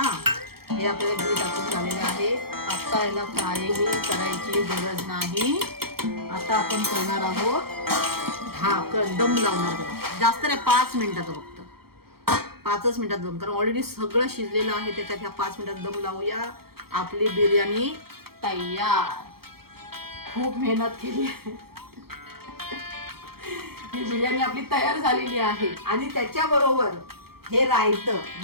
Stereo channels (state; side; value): late; left; 0.95 ms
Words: हे आपल्याला घी टाकून झालेलं आहे. आता याला काहीही करायची गरज नाही. आता आपण करणार आहोत ढाकण, दम लावणार त्याला. जास्त नाही, 5 मिनिटाचं फक्त. 5च मिनिटात दम, कारण ऑलरेडी सगळं शिजलेलं आहे त्याच्यात. ह्या 5 मिनिटात दम लावूया. आपली बिर्याणी तयार. खूप मेहनत केली आहे. ही बिर्याणी आपली तयार झालेली आहे. आणि त्याच्याबरोबर हे रायतं,